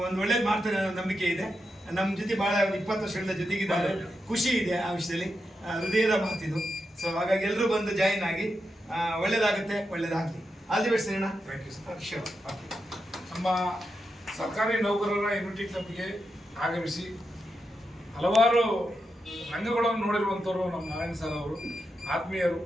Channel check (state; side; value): normal; both; correlation 0.86